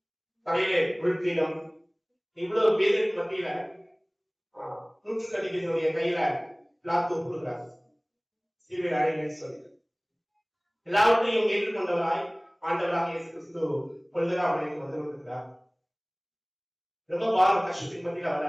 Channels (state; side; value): identical; both; correlation 1.00